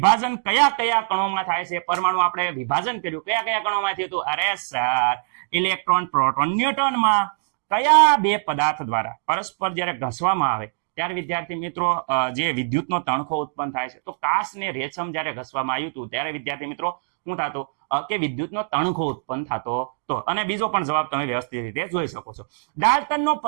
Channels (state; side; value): silent; left; digital silence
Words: કયા કયા કણોમાં થાય છે? પરમાણુ આપણે વિભાજન કર્યું, કયા કયા કણોમાં થયું હતું? અરે સર, ઇલેક્ટ્રોન, પ્રોટોન, ન્યુટ્રોનમાં. કયા બે પદાર્થ દ્વારા પરસ્પર જ્યારે ઘસવામાં આવે ત્યારે વિદ્યાર્થી મિત્રો જે વિદ્યુતનો તણખો ઉત્પન્ન થાય છે? તો કાચ ને રેશમ જ્યારે ઘસવામાં આવ્યું હતું ત્યારે વિદ્યાર્થી મિત્રો શું થતું કે વિદ્યુતનો તણખો ઉત્પન્ન થતો હતો. અને બીજો પણ જવાબ તમે વ્યવસ્થિત રીતે જોઈ શકો છો. ડાલ્ટનનો